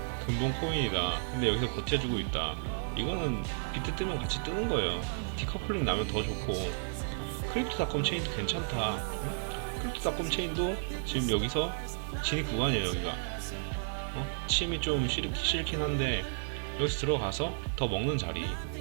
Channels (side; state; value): left; silent; 56 dB below the other